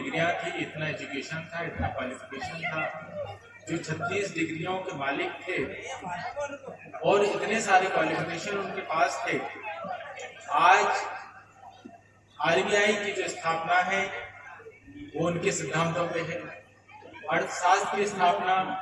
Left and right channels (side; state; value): both; identical; correlation 1.00